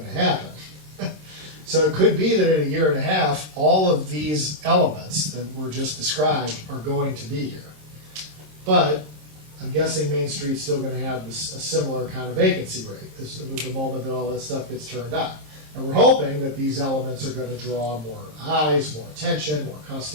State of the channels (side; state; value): left; late; 26 ms